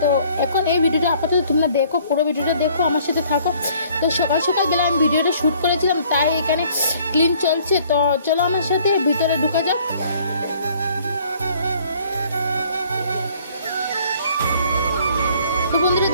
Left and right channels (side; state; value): both; inverted; correlation -0.58